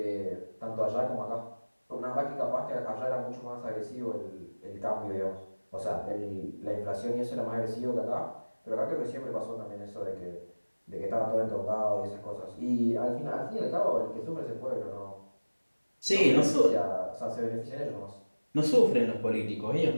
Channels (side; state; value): both; inverted; correlation -1.00